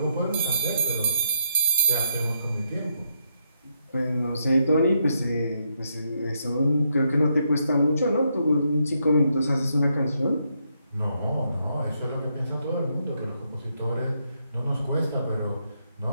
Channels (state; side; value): inverted; both; correlation -0.78